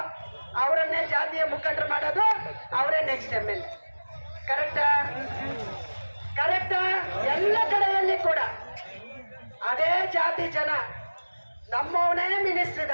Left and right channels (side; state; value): both; inverted; correlation -1.00